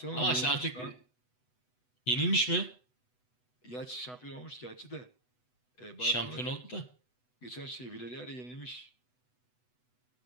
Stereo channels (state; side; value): late; right; 8.0 ms